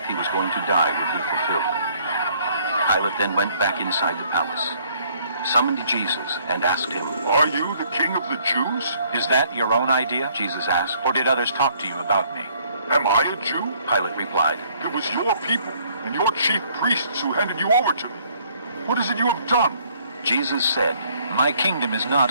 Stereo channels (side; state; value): both; inverted; correlation -0.63